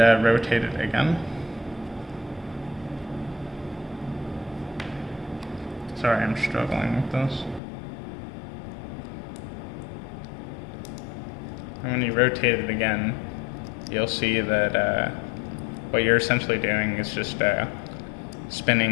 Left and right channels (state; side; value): drops out; right; at 7.6 s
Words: rotate it again. Sorry, I'm struggling with this. And when you rotate it again, you'll see that what you're essentially doing is just